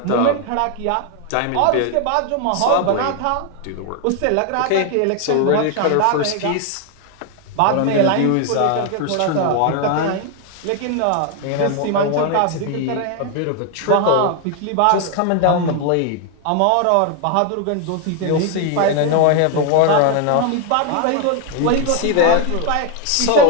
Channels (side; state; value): both; different; correlation 0.01